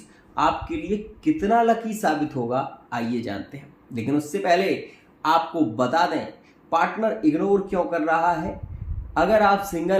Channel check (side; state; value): both; identical; correlation 1.00